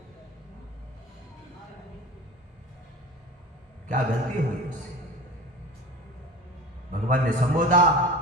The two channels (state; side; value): normal; both; correlation 0.36